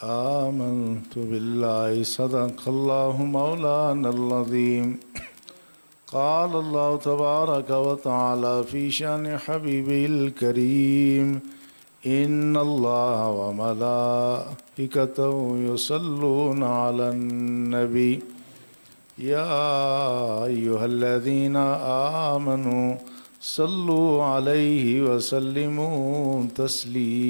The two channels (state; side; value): inverted; both; correlation -1.00